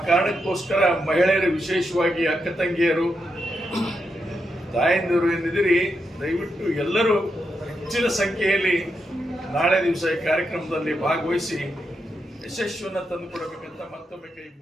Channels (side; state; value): both; normal; correlation 0.84